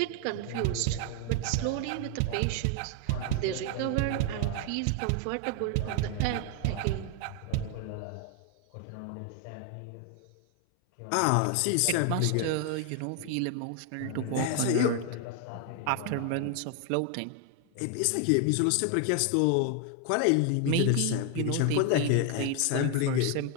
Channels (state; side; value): different; both; correlation 0.01